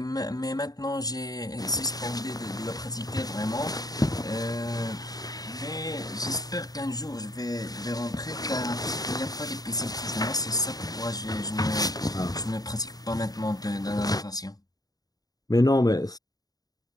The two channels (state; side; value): late; right; 0.18 ms